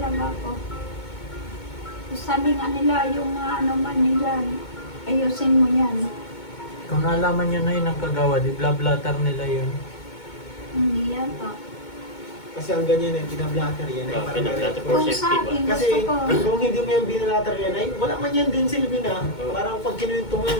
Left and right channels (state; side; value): late; right; 2.2 ms